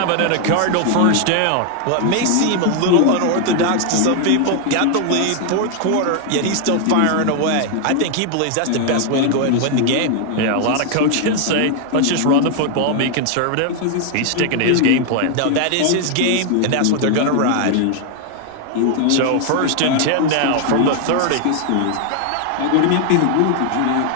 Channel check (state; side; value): different; both; correlation 0.00